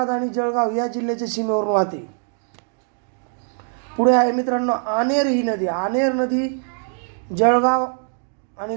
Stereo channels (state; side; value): silent; left; 56 dB below the other